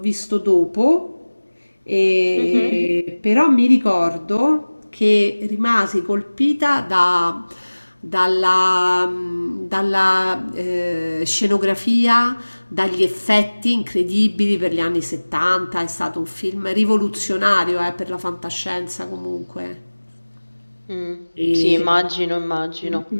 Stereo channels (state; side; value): inverted; both; correlation -1.00